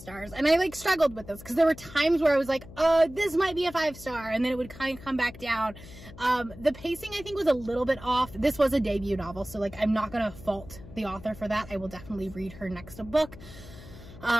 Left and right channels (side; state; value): left; noise; hum, 17 dB below the sound